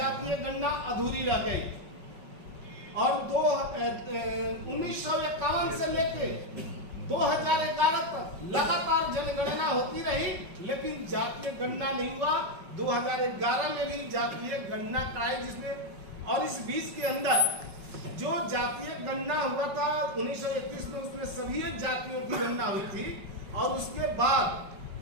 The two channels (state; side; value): late; left; 5.4 ms